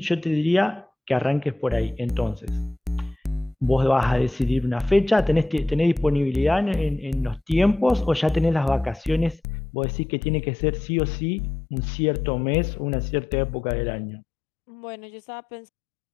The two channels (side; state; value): right; drops out; at 9.4 s